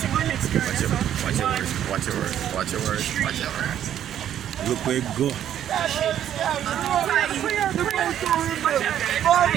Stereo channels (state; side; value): quieter; left; 10.6 dB